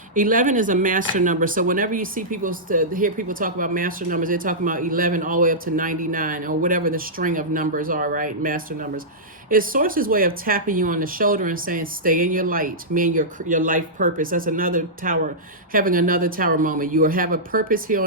11 is a master number. So whenever you see hear people talk about master numbers, they're talking about 11 all the way up to 99 or whatever the string of numbers are, right? Master numbers. It's Source's way of tapping you on the shoulder and saying, stay in your light, meaning your life purpose. That's another tower, having another tower moment. You have a purpose here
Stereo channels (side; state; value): both; normal; correlation -0.13